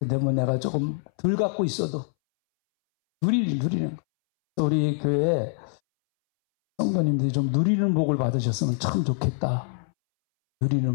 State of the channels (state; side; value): silent; right; 62 dB below the other